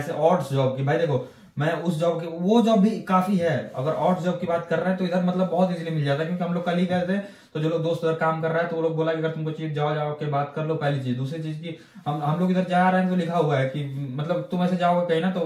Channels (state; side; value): identical; both; correlation 1.00